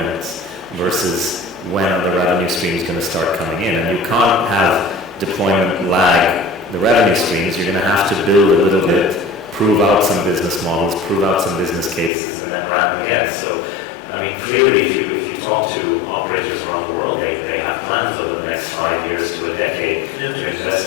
versus when the revenue stream is going to start coming in. And you can't have deployment lag the revenue streams. You're going to have to build a little bit, prove out some business models, prove out some business cases, and then ramp again. So clearly if you talk to operators around the world, they have plans over the next 5 years to a decade to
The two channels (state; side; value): drops out; right; at 12.1 s